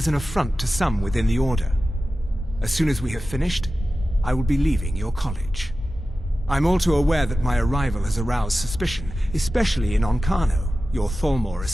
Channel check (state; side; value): normal; both; correlation 0.94